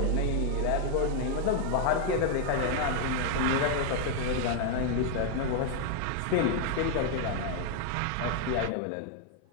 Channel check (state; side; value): different; both; correlation 0.00